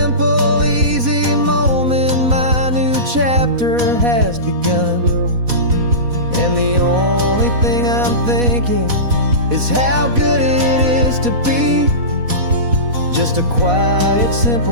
easy moment, my new chapter has begun. And the only thing I'm thinking is how good it is to be just a quiet,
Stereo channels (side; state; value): left; late; 4.1 ms